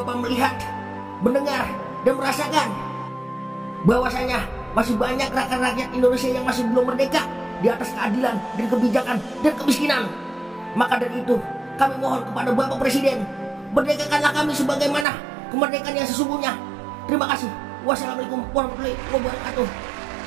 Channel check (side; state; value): left; drops out; at 15.1 s